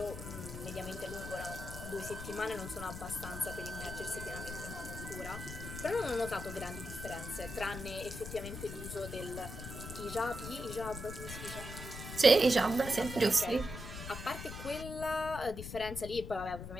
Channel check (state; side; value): noise; left; rumble, 8 dB below the sound